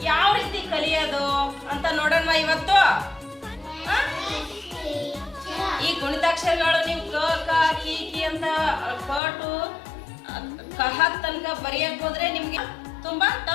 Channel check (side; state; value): right; drops out; at 9.2 s